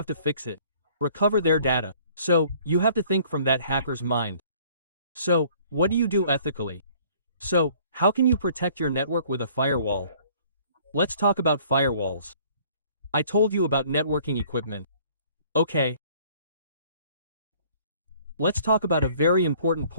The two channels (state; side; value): inverted; both; correlation -0.56